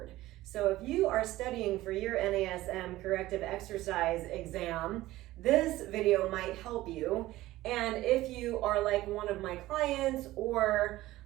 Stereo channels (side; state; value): left; quieter; 16.7 dB